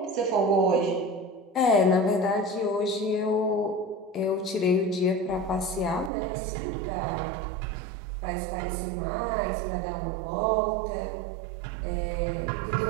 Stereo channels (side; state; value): left; drops out; at 6.1 s